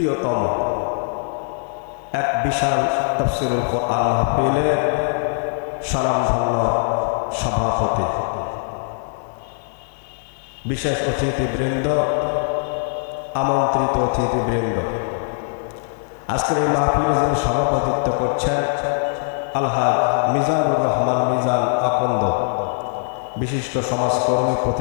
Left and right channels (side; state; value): right; silent; 64 dB below the other